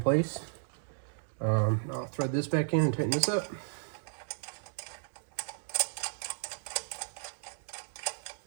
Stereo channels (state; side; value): silent; left; digital silence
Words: I'll thread this back in and tighten this up.